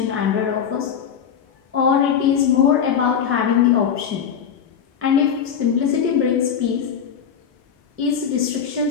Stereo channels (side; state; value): right; quieter; 7.7 dB